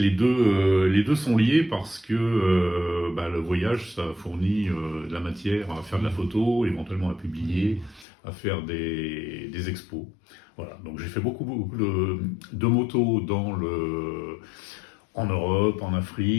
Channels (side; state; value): right; drops out; at 8.1 s